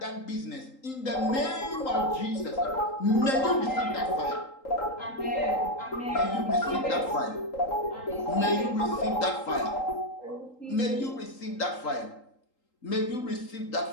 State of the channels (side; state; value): right; late; 3.8 ms